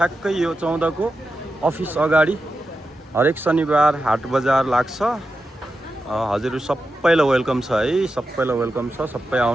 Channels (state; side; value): normal; both; correlation 0.89